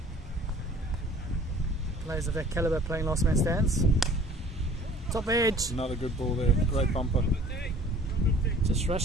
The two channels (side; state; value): both; normal; correlation 0.51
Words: players of that caliber playing Last Man Stands. Top edge. Another good ball there. Great bumper. Just